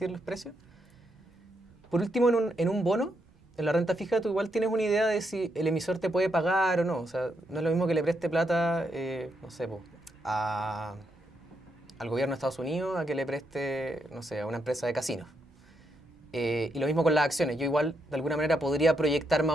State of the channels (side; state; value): both; normal; correlation 0.80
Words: los precios. Por último, en un bono, en la renta fija, tú igual tienes una idea de si el emisor te puede pagar o no. O sea, no es lo mismo que le preste plata, no sé, al gobierno de Estados Unidos a que le preste, no sé, a una empresa de casinos. Y lo mismo con las acciones. Yo igual, de alguna manera, podría proyectar más